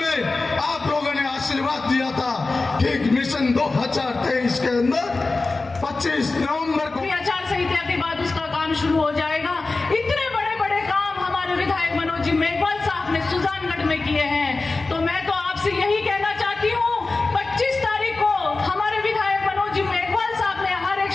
आप लोगों ने आशीर्वाद दिया था, ठीक मिशन 2023 के अंदर 25 नवंबर को आचार संहिता के बाद उसका काम शुरू हो जाएगा। इतने बड़े बड़े काम हमारे विधायक मनोज जी मेघवाल साहब ने सुजानगढ़ में किए हैं, तो मैं तो आपसे यही कहना चाहती हूँ 25 तारीख को हमारे विधायक मनोज जी मेघवाल साहब ने हर एक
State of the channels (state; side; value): quieter; right; 3.5 dB